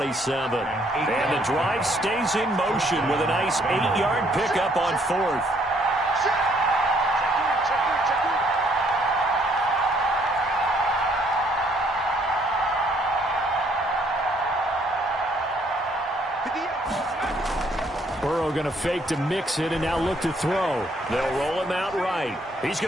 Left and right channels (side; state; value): both; normal; correlation 0.66